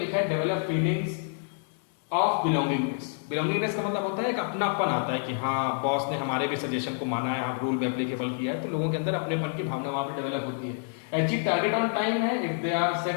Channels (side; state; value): right; silent; 59 dB below the other